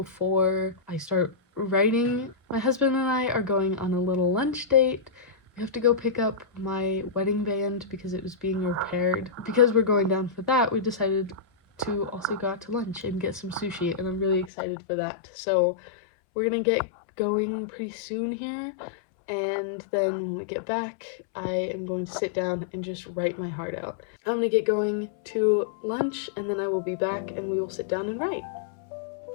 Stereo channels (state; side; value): drops out; right; at 14.5 s